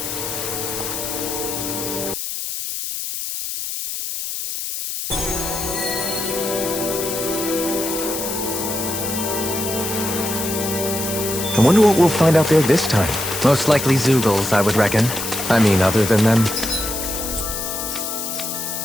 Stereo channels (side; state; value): left; noise; hiss, 5 dB below the sound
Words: I wonder what we'll find out there this time. Most likely Zeugles, I would reckon. I mean, other than them.